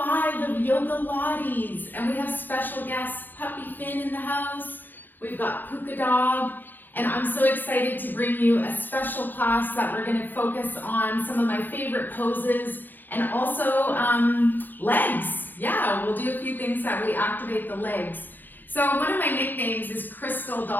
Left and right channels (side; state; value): right; late; 0.089 ms